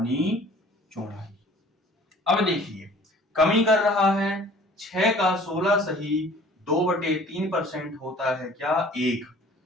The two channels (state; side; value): normal; both; correlation 0.51